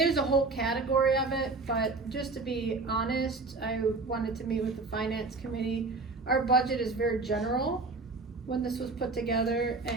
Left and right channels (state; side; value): quieter; left; 3.7 dB